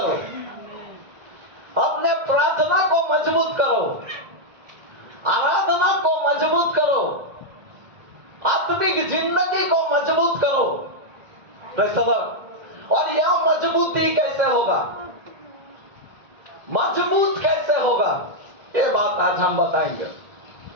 अपने प्रार्थना को मजबूत करो, आराधना को मजबूत करो, आत्मिक जिंदगी को मजबूत करो। और यह मजबूती कैसे होगा? मजबूत कैसे होगा? ये बात आज हम बताएंगे।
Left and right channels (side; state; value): left; late; 2.0 ms